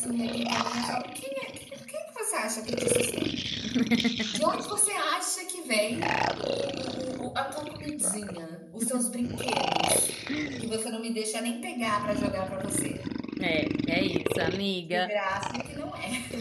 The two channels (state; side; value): identical; both; correlation 1.00